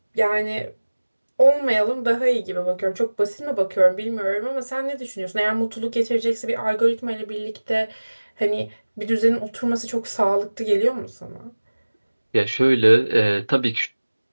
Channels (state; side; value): inverted; both; correlation -1.00